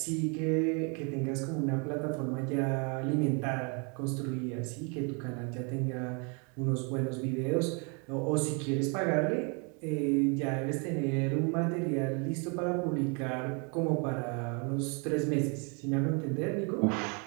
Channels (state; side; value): quieter; left; 34.7 dB